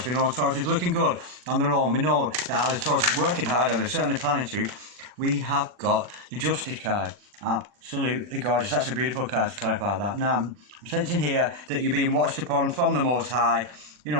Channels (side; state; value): left; late; 40 ms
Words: We know Taurus is looking good on their own. We know that as Taurus is working hard, and they're certainly planning to. We have got the Justice card. Absolutely gorgeous. That's a beautiful card to clarify that. Now, I'm sensing here that you're being watched upon from the Most High. You